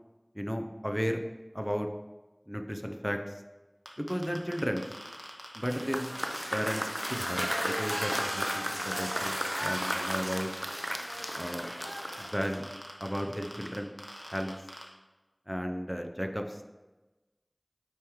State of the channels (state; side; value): identical; both; correlation 1.00